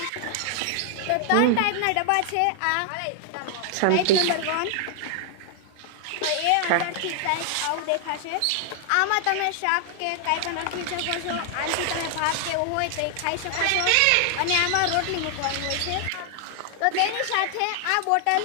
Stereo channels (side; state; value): both; different; correlation 0.00